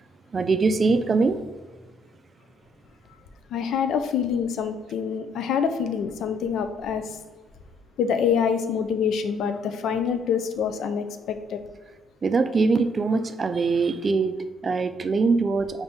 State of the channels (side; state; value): both; normal; correlation 0.68